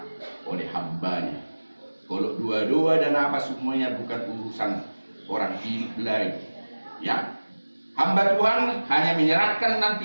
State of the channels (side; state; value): both; inverted; correlation -1.00